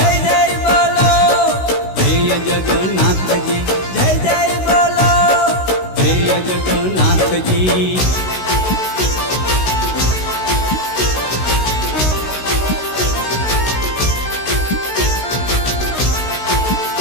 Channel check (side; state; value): right; late; 16 ms